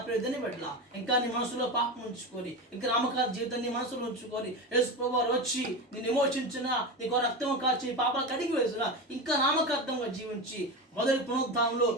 ప్రియదని పెట్టలా ఇంకా నీ మనసులో పాపం ఉంచుకొని ఇంకా నామకాల జీవితాన్ని మనసులో ఉంచుకొని యేసు ప్రభు వారు వచ్చి నేను విమోచించిన నీకు రక్తం కాచి పాపాలు కడిగి వేసిన ఇంకా నామకార్థంగా జీవించి మొదటి పునరుద్ధానంలో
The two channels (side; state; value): both; normal; correlation 0.21